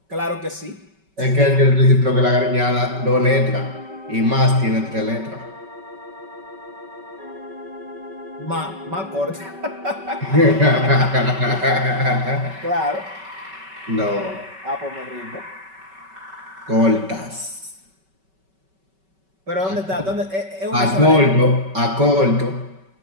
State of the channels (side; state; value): left; late; 5.2 ms